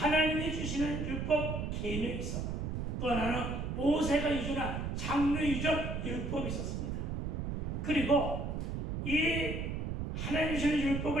주시는 율법 계명이 있었고, 또 하나는 모세가 유전한 장로 유전 율법이 있었습니다. 그리고 이 하나님 주시는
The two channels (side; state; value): right; noise; rumble, 3 dB below the sound